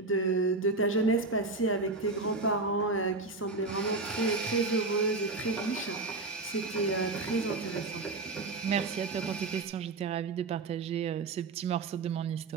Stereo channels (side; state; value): left; quieter; 3.6 dB